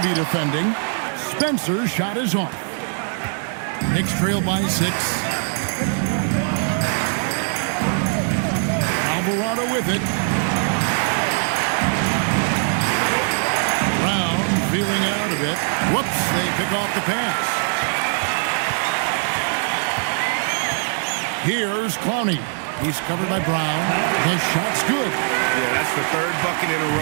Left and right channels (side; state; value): left; silent; digital silence